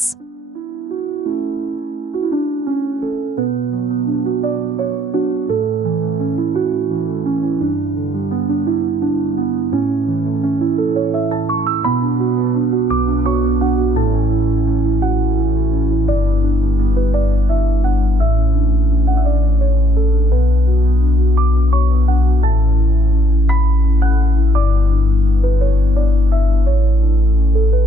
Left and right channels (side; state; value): both; normal; correlation 0.66